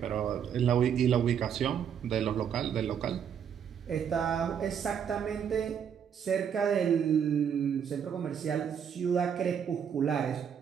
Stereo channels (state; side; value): quieter; left; 8.0 dB